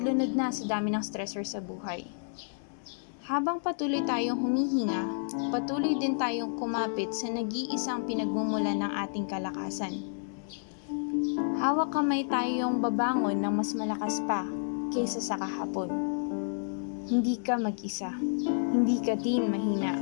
na sa dami ng stressors sa buhay? Habang patuloy tayong humihinga, patuloy din tayong kumapit sa nag-iisang pinagmumulan ng ating kalakasan. Hawak-kamay tayong babangon ng mas malakas pa kesa sa kahapon. Hindi ka mag-isa. Hindi ka din mahina.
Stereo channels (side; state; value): right; silent; digital silence